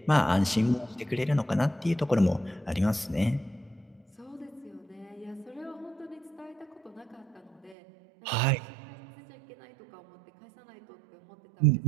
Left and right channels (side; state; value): left; drops out; at 7.8 s